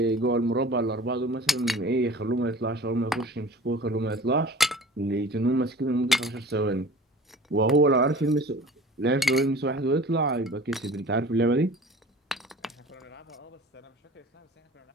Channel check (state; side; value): normal; both; correlation 0.42